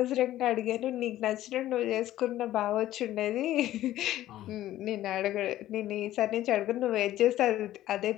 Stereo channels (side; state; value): right; quieter; 14.0 dB